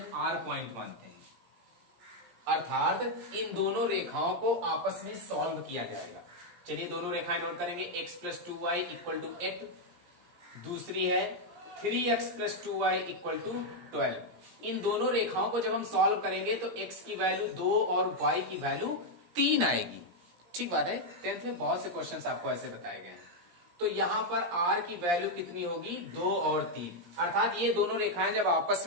R पॉइंट मानते हैं, अर्थात इन दोनों रेखाओं को आपस में सॉल्व किया जाएगा। चलिए दोनों रेखाएं नोट करेंगे, x plus 2y equal to 8, दूसरी है 3x plus 2y equal to 12। इन दोनों रेखाओं को जब हम सॉल्व करेंगे तो x की वैल्यू 2 और y की वैल्यू 3 आएगी, ठीक बात है। 10th में बहुत से क्वेश्चंस आपको ऐसे बताए गए हैं। तो यहां पर r की वैल्यू कितनी होगी, 2 और 3, अर्थात ये दोनों रेखाएं जब आपस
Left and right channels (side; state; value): left; late; 17 ms